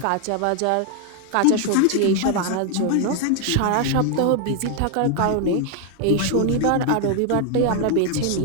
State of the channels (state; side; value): different; both; correlation 0.00